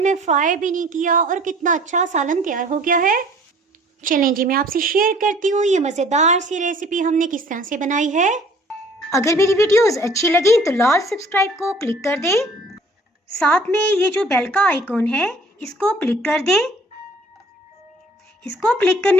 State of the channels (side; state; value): both; normal; correlation 0.53